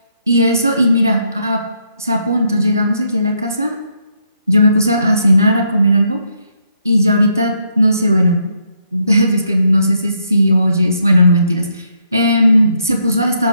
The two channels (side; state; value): both; inverted; correlation -0.74